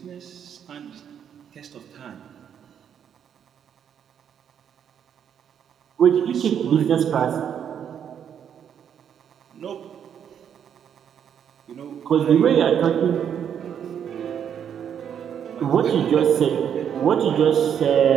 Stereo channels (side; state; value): left; quieter; 8.6 dB